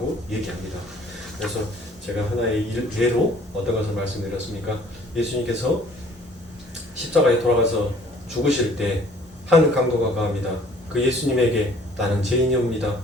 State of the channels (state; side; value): normal; both; correlation 0.55